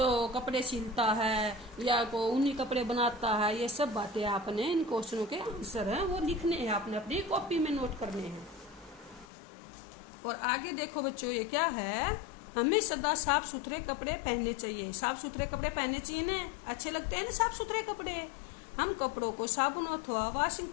कपड़े सिलता है या को ऊनी कपड़े बनाता है, ये सब बातें आपने इन क्वेश्चनों के आंसर हैं वो लिखने हैं, आपने अपनी कॉपी में नोट करने हैं। और आगे देखो बच्चों, ये क्या है, हमें सदा साफ सुथरे कपड़े पहनने चाहिए। साफ सुथरे कपड़े पहनने चाहिए ना, अच्छे लगते हैं ना साफ सुथरे कपड़े। हम कपड़ों को साबुन अथवा वॉशिंग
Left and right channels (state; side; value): drops out; right; at 9.2 s